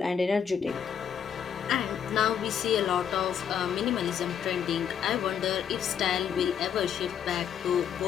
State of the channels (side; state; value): right; quieter; 8.2 dB